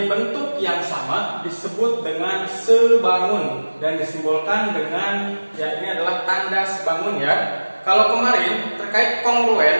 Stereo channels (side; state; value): both; inverted; correlation -1.00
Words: bentuk yang sama disebut dengan sebangun dan disimbolkan dengan ini adalah tanda sebangun ya. Kalau kemarin terkait